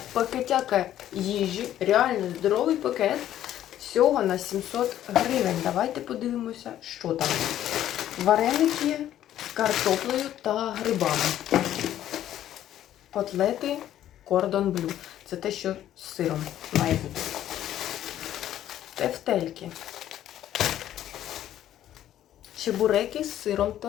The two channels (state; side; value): quieter; right; 11.9 dB